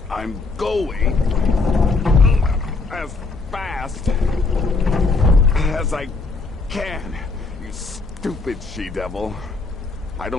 I'm going as fast as I can, you stupid she-devil. I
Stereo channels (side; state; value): right; quieter; 3.8 dB